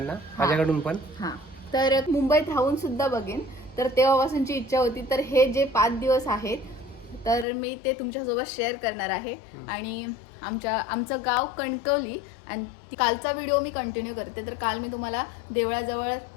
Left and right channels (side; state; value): right; drops out; at 7.5 s